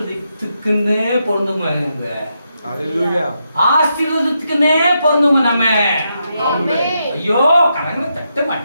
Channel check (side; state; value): both; inverted; correlation -0.83